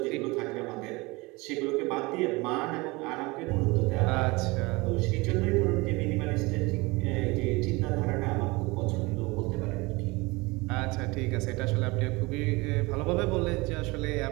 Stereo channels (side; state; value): left; quieter; 24.0 dB